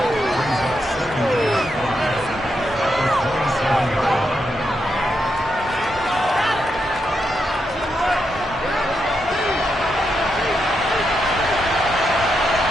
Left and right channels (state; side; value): normal; both; correlation 0.83